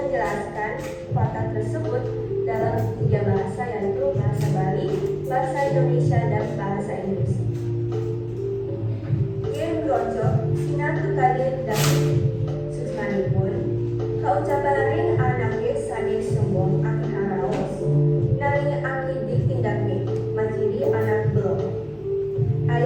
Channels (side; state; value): both; identical; correlation 1.00